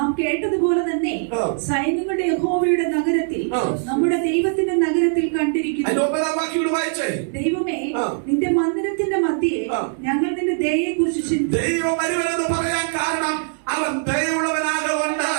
കേട്ടതുപോലെ തന്നെ സൈന്യങ്ങളുടെ യഹോവയുടെ നഗരത്തിൽ, നമ്മുടെ ദൈവത്തിന്റെ നഗരത്തിൽ കണ്ടിരിക്കുന്നു. ദൈവമേ, നിന്റെ മന്ദിരത്തിന്റെ മധ്യേ ഞങ്ങൾ നിന്റെ ദയയെ കുറിച്ച് ചിന്തിച്ചു. ദൈവം വലിയവനെന്ന് പറയാൻ കാരണം അവൻ ദയയുള്ളവനാകൊണ്ട്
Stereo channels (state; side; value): silent; left; 65 dB below the other